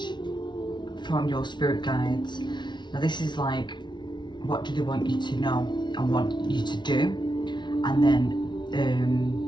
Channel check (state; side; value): late; right; 0.22 ms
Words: from your spirit guides. Now this is like, what do they want you to know and want you to do, and then